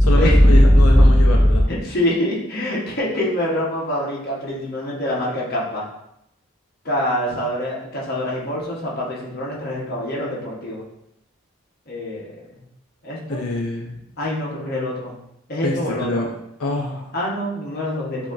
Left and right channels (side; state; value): both; normal; correlation 0.74